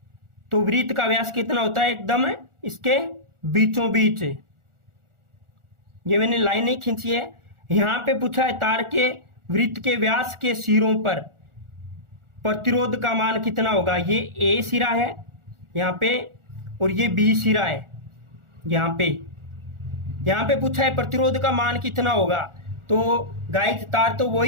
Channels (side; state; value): left; late; 1.4 ms